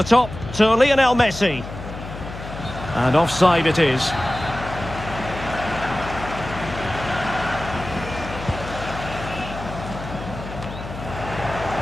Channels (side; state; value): left; noise; hum, 11 dB below the sound